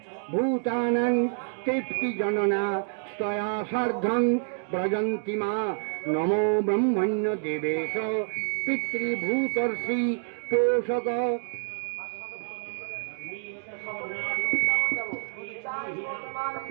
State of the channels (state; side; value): silent; left; digital silence